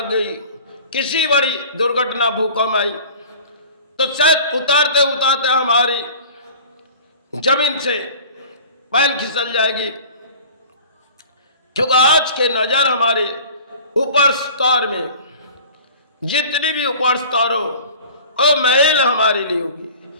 गई, किसी बड़ी दुर्घटना भूकंप आई, तो शायद उतारते उतारते हमारी जमीन से पैर खिसल जाएगी, क्योंकि आज के नजर हमारे ऊपर स्तर में जितनी भी ऊपर स्तर हो वो महल हमारे लिए होगी।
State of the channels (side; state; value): both; inverted; correlation -0.43